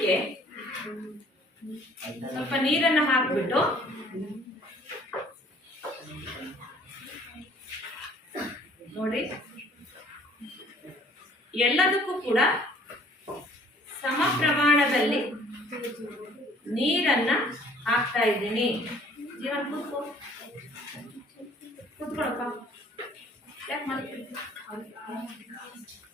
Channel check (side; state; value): both; normal; correlation 0.56